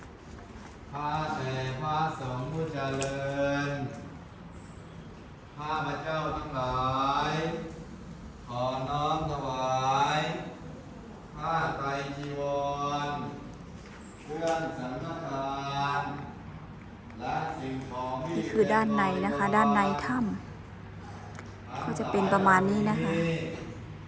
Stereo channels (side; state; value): both; identical; correlation 1.00